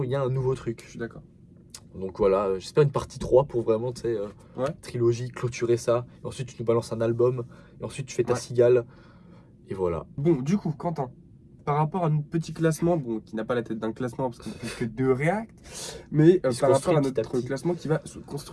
il y a un nouveau truc. Je suis d'accord. Donc voilà, j'espère une partie 3 pour vraiment, tu sais, Ouais. trilogie, clôturer ça. Et ensuite, tu nous balances un album. Et ensuite, tu fais ta Ouais. cigale. Et voilà. Bon, du coup, Quentin, par rapport à notre petit classement, bon, qui n'a pas la tête d'un classement parce qu'il n'y a que 2 React, mais Il se par rapport construit à petit à notre petit. classement qui va se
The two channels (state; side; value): identical; both; correlation 1.00